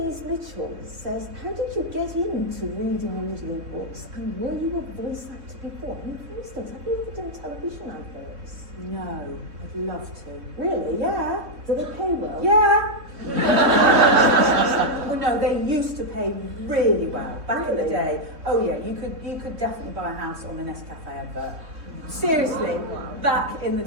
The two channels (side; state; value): left; late; 3.7 ms